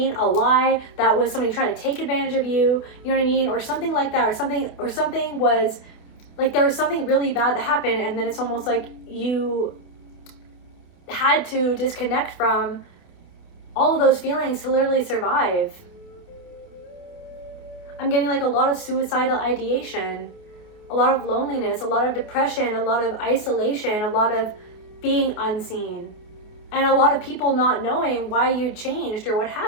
A lie. That was somebody trying to take advantage of you. You know what I mean? Or something like that. Or something was like, there was something really bad that happened. And then it's almost like you had to disconnect from all of those feelings to literally survive. I'm getting like a lot of suicidal ideation, a lot of loneliness, a lot of depression, a lot of isolation, a lot of being unseen, and a lot of people not knowing why you changed or what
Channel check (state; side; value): late; right; 28 ms